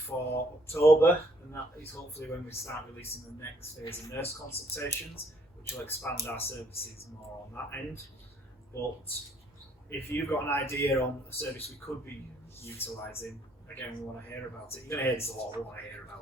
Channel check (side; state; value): both; normal; correlation 0.65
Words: October, and that is hopefully when we start releasing the next phase of nurse consultations, which will expand our services more on that end. But if you've got an idea on a service we could be utilising, again, we want to hear about it. You're going to hear this a lot, we want to hear